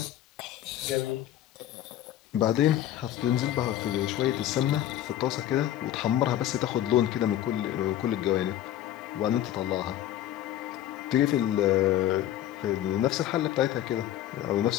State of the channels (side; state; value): right; quieter; 12.4 dB